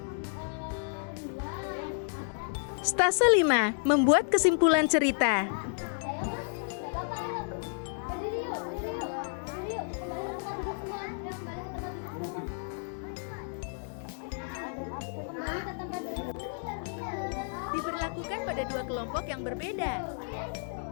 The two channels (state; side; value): silent; right; digital silence